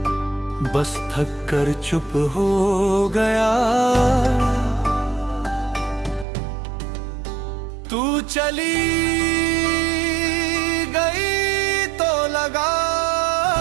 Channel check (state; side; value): drops out; left; at 6.2 s